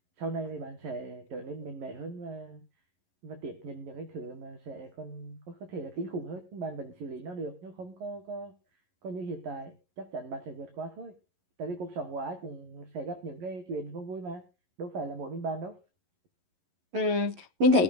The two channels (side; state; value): left; late; 11 ms